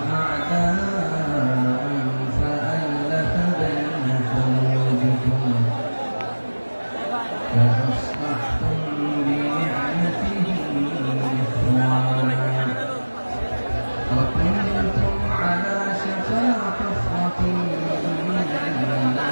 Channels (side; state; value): both; inverted; correlation -1.00